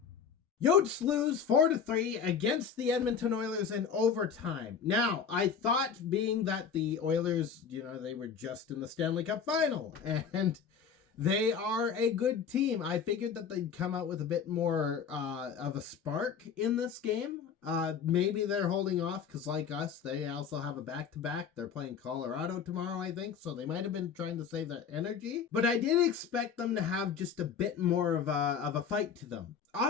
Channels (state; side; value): quieter; right; 6.8 dB